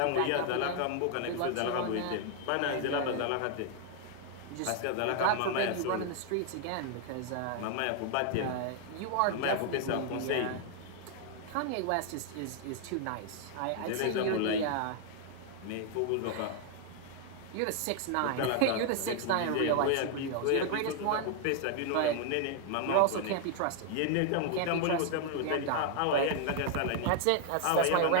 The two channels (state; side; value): different; both; correlation 0.00